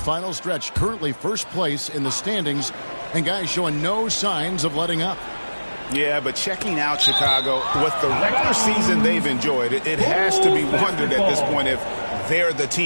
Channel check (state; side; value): inverted; both; correlation -1.00